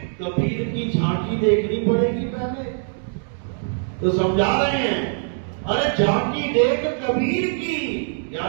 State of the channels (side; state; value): left; silent; digital silence